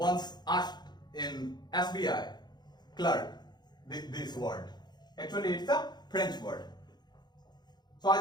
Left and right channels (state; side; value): late; right; 0.21 ms